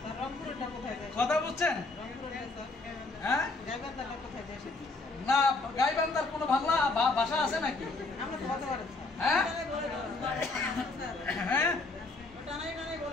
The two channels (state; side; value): quieter; right; 3.4 dB